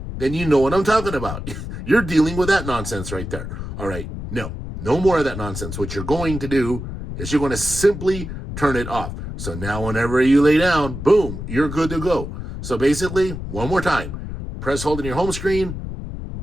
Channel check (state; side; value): noise; left; rumble, 8 dB below the sound